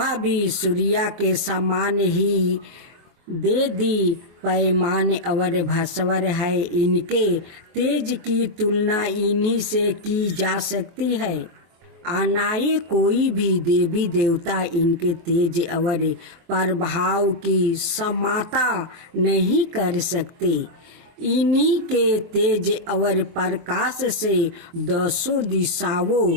भी सूर्य के समान ही दे दी पैमान और भास्वर है। इनके तेज की तुलना इन्हीं से की जा सकती है। अनाए कोई भी देवी देवता इनके तेज और प्रभाव की समाता नहीं कर सकते। इन्हीं के तेज और प्रकाश से दसों दिशाओं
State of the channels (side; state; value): left; late; 23 ms